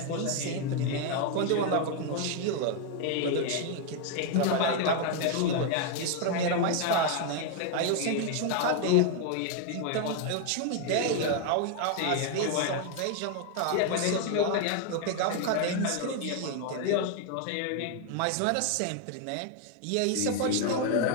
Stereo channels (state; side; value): different; both; correlation 0.01